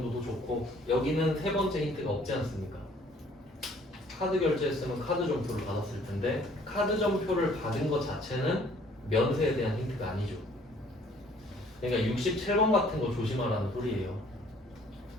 좋고, 여기는 세 번째 힌트가 없지 않습니까? 카드 결제했으면 카드 점표를 받았을 텐데 카드 점표를 받은 것 자체는 면세에 대한 힌트가 아니죠. 그러니까 67번 같은 거 조심하라는 소리예요.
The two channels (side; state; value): both; normal; correlation 0.58